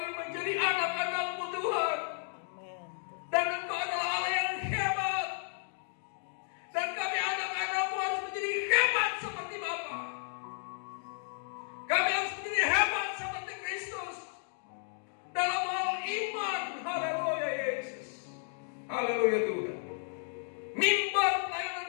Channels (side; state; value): right; silent; 56 dB below the other